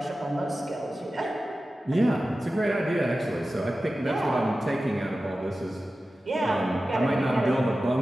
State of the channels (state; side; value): normal; both; correlation 0.94